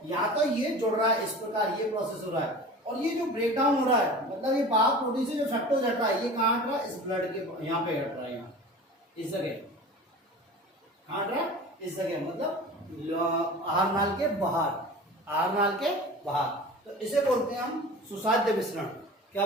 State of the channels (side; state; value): both; normal; correlation 0.37